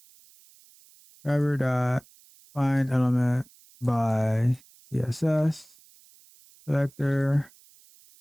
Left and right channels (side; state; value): right; noise; hiss, 27 dB below the sound